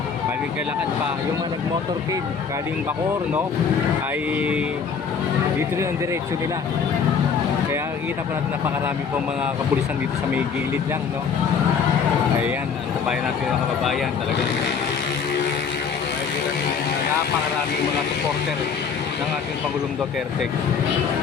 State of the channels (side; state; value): right; quieter; 6.2 dB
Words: Balik kalakad pa yung mga nag-motorcade galing Bacoor, no, ay dito rin ang diretsyo nila. Kaya nakikita po natin napakarami po mga kapulisan dito sa may gilid lang, no. Ayan, ang tabayan natin mga kababayan, talagang napakaraming mga supporter ng ating Pangulong Duterte.